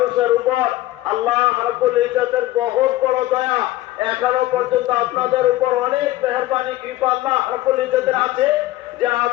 উপর আল্লাহ রাব্বুল ইজ্জতের বহুত বড় দয়া, এখনো পর্যন্ত আপনাদের উপর অনেক মেহেরবানি কৃপা আল্লাহ রাব্বুল ইজ্জতের আছে যে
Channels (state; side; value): quieter; right; 16.2 dB